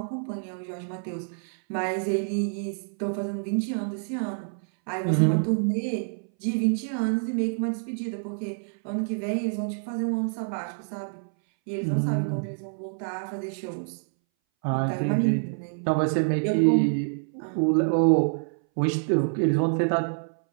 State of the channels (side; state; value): left; silent; 60 dB below the other